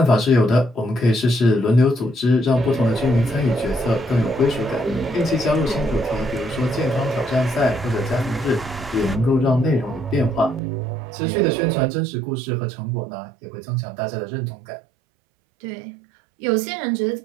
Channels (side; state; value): left; drops out; at 10.6 s